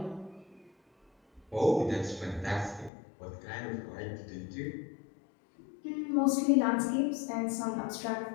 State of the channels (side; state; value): right; drops out; at 2.9 s